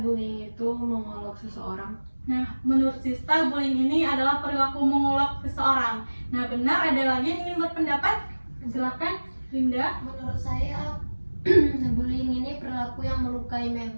bullying itu mengolok seseorang. Nah, menurut Sista bullying ini adalah perilaku mengolok seseorang. Nah, benar, ada lagi yang ingin berpendapat? Silakan, Linda. Menurut saya bullying ini perilaku yang melukai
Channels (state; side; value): inverted; both; correlation -1.00